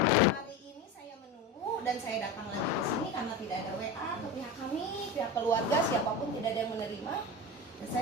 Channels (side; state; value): both; normal; correlation 0.26